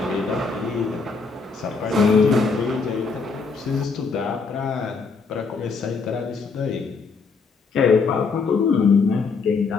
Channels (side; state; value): right; quieter; 4.8 dB